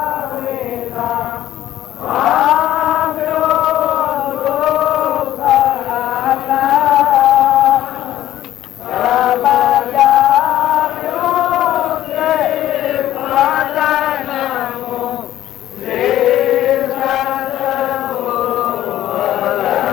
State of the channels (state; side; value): quieter; right; 13.0 dB